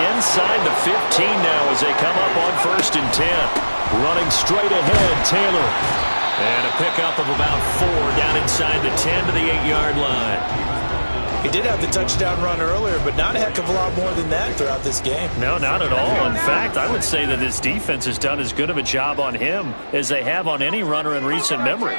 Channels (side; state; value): both; inverted; correlation -1.00